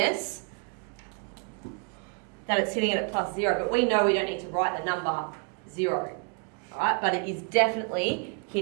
that it's hitting it at plus 0. But we know we don't need to write the number 0. Alright, but it is definitely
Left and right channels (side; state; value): left; quieter; 38.9 dB